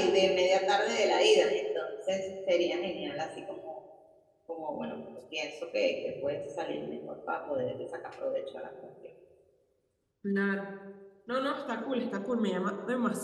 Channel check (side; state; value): both; identical; correlation 1.00